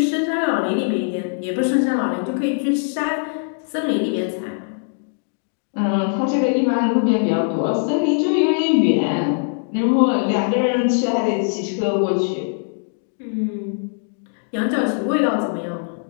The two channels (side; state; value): right; silent; digital silence